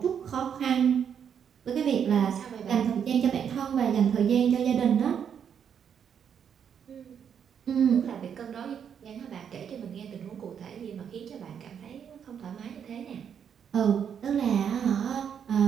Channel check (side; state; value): left; quieter; 8.0 dB